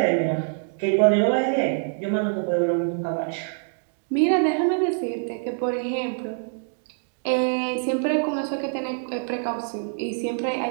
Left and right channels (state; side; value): silent; left; digital silence